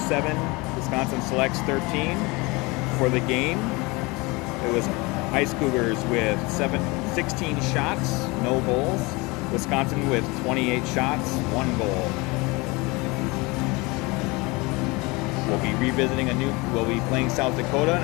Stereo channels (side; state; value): right; quieter; 25.2 dB